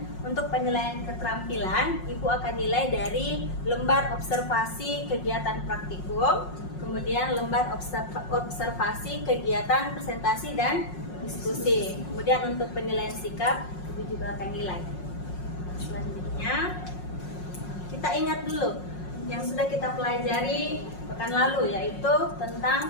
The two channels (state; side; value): late; right; 5.5 ms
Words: untuk penilaian keterampilan, Ibu akan nilai dari lembar observasi kegiatan praktikum, kemudian lembar observasi kegiatan presentasi dan diskusi. Kemudian untuk penilaian sikap, Ibu juga akan nilai. Selanjutnya, kita ingat dulu yang sudah kita pelajari pekan lalu, yaitu